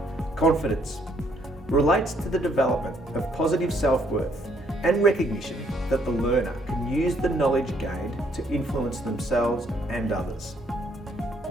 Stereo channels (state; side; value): normal; both; correlation 0.68